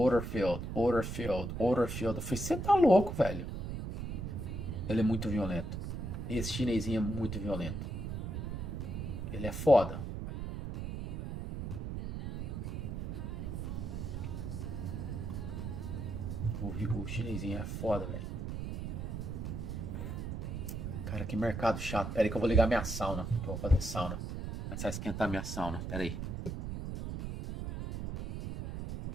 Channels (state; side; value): noise; right; rumble, 5 dB below the sound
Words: field, order field, order field. Eu falei, você tá louco, velho. Ele é muito violento. Esse chinesinho é muito violento. Ele é foda. O chinesinho é foda, velho. Cara, que mercado chato. Pera aí que eu vou ligar minha sauna. Que eu vou fazer sauna. Começar a esquentar minha sauna. Pera aí.